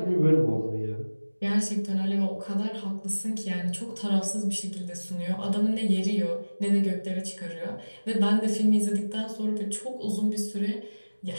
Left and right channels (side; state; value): both; inverted; correlation -1.00